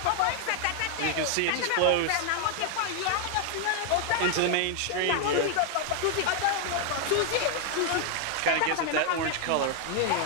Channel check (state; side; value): different; both; correlation 0.00